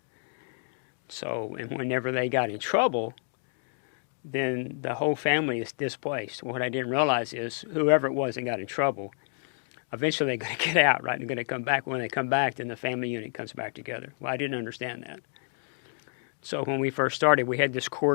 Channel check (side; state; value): right; silent; 58 dB below the other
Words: So, and whenever they got in trouble, then the whole family is displaced. What I didn't realize is whoever it was that got in trouble, eventually they're going to get out, right? They're going to come back. When they come back, then the family unit comes back together. Well, I didn't understand that. So when we first started, we had this